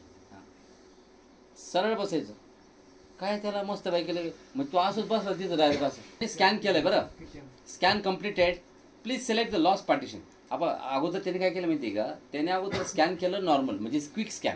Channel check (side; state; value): both; identical; correlation 1.00